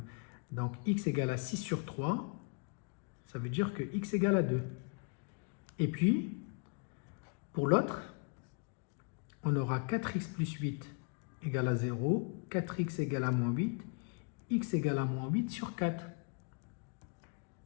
Donc x égale à 6 sur 3, ça veut dire que x égale à 2. Et puis, pour l'autre, on aura 4x plus 8 égale à 0, 4x égale à moins 8, x égale à moins 8 sur 4.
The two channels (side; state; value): right; quieter; 36.8 dB